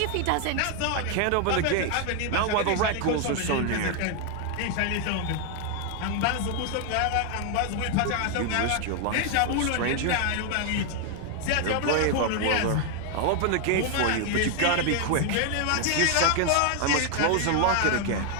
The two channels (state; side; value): different; both; correlation 0.00